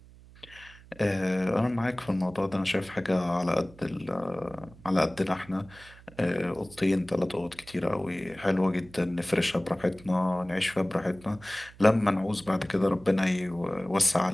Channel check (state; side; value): noise; right; hum, 22 dB below the sound